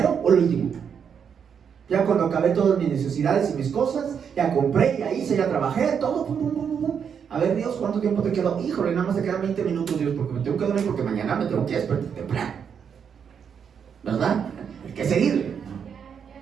o el último? Ya cuando acabé todas mis necesidades y mis cosas, ya compré, ya hice, ya trabajé, todo, pum, pum, pum, pum. A ver, Dios, ¿cuánto tiempo te quedó? Híjole, nada más te quedan 20 minutos, Dios, porque me tengo que dormir, porque mañana me tengo que despertar temprano. ¿Verdad? Hay que seguirle.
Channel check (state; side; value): quieter; left; 7.3 dB